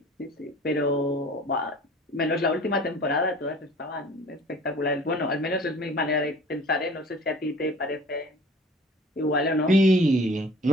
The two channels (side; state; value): both; normal; correlation 0.47